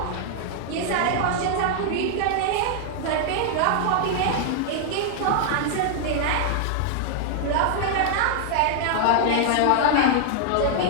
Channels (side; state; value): both; different; correlation -0.01